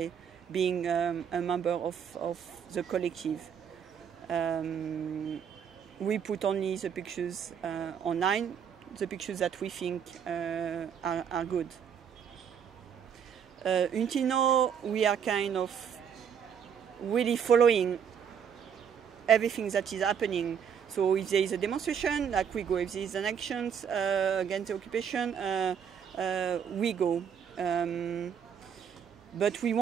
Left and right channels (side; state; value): left; quieter; 7.7 dB